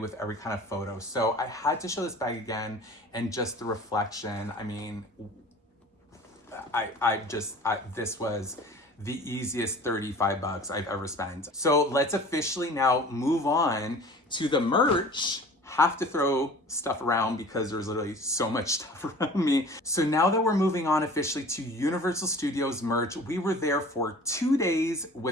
every kind of photo. So I had to show this bag again, and just the reflection. I mean, this was the easiest 35 bucks I've ever spent. So let's officially now move on to the merch. have to throw stuff around because there's literally so much stuff around me. So now that we're moving on officially to Universal Studios merch, we were there for 2 days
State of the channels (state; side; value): normal; both; correlation 0.43